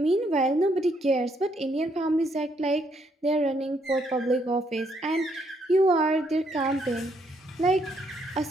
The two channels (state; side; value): normal; both; correlation 0.72